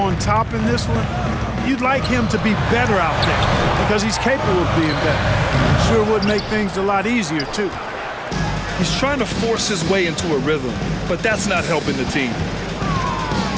top in this one, you'd like him to be better out there because he's capable of being better. Sure would make things a lot easier, too. He's trying to force his way into a rhythm, but that's not helping the team.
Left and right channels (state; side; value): identical; both; correlation 1.00